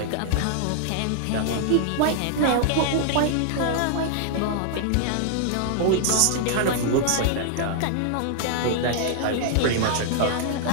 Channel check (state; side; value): different; both; correlation -0.01